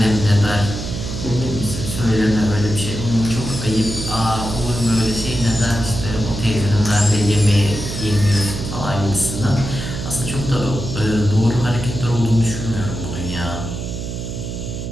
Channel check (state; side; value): noise; right; hum, 6 dB below the sound